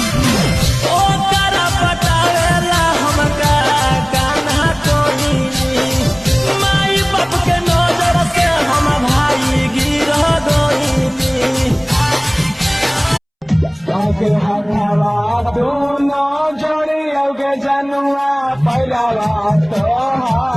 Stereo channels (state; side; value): identical; both; correlation 1.00